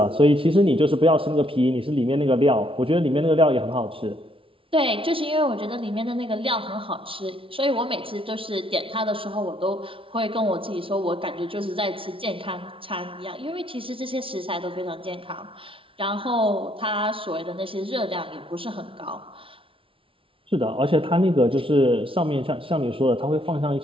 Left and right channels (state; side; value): late; left; 0.26 ms